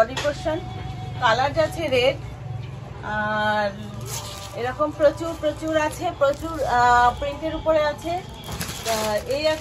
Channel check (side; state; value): both; identical; correlation 1.00